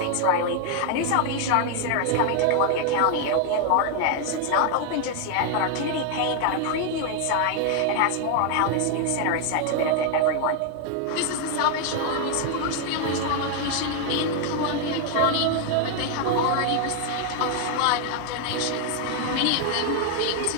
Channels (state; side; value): different; both; correlation 0.00